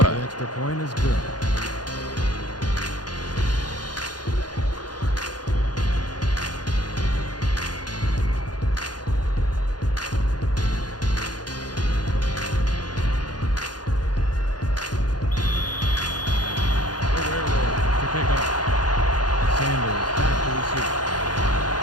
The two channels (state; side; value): late; right; 0.69 ms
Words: The extra point is good.